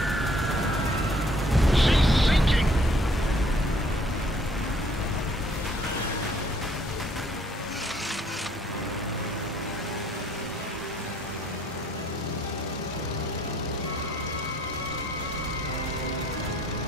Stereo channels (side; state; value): both; normal; correlation 0.62